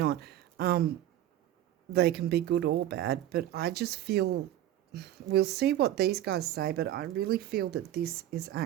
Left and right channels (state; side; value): quieter; left; 12.6 dB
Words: They can be good or bad, but I just feel, we'll see what these guys say, but I really feel that this is